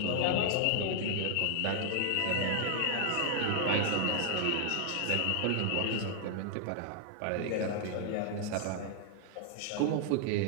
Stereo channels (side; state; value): both; different; correlation 0.00